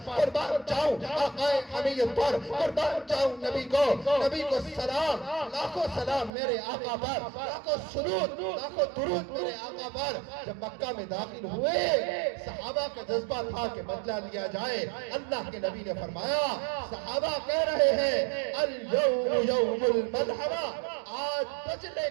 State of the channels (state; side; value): drops out; left; at 6.3 s